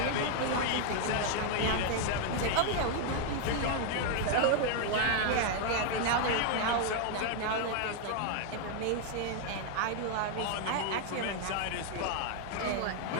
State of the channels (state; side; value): different; both; correlation 0.00